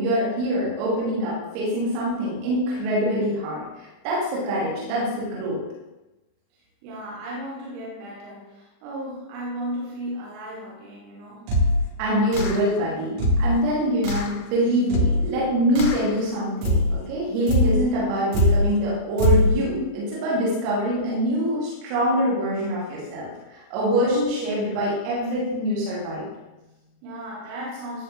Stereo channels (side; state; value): left; late; 40 ms